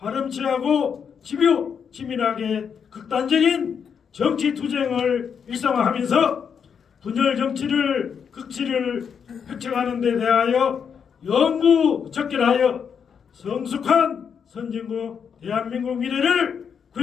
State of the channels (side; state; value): right; quieter; 7.0 dB